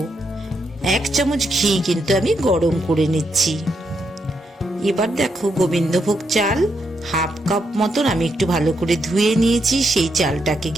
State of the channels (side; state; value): both; normal; correlation 0.80